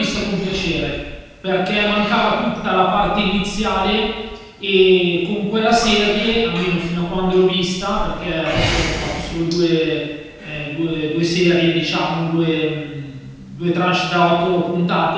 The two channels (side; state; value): both; identical; correlation 1.00